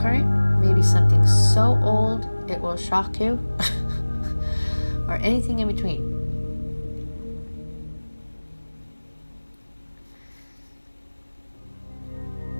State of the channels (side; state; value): both; inverted; correlation -1.00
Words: maybe something so old it will shock you, or anything in between.